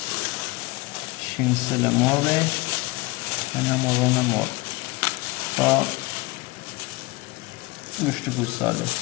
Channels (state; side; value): quieter; right; 22.8 dB